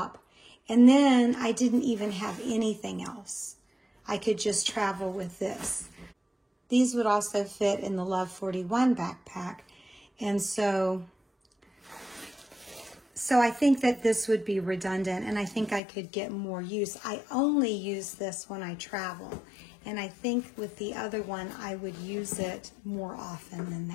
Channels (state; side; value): drops out; right; at 15.8 s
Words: And then I didn't even have anything else. I could just travel with this. These would also fit in the Love 41 backpack. And so I think that this would be redundant, and I think I could get more use. I only use this when I travel, and I think with the other one, I would use it more often than